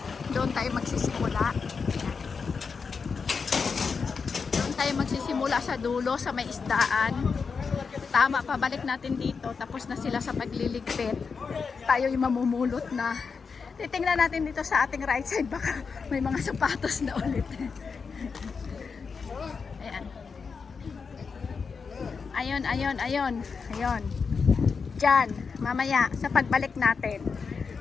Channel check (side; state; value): right; quieter; 5.3 dB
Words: Doon tayo magsisimula. Doon tayo magsisimula sa dulo, sa may isdaan. Tama, pabalik natin dito. Tapos na sila sa pagliligpit. Tayo yung mamumulot na. Titingnan natin dito sa ating right side. Baka may mga sapatos na ulit. Ayan. Ayun. Diyan, mamaya sa pagbalik natin.